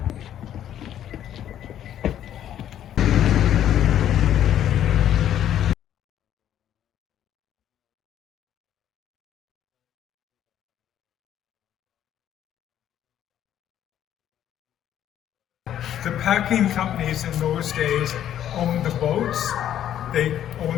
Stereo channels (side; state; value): right; quieter; 10.9 dB